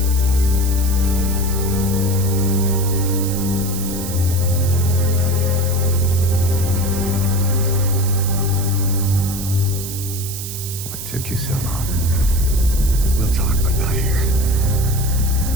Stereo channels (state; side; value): noise; right; hiss, 8 dB below the sound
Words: Took you so long.